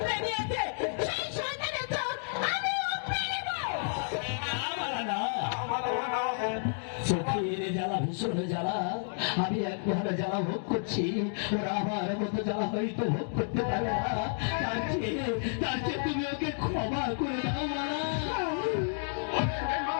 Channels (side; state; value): right; silent; digital silence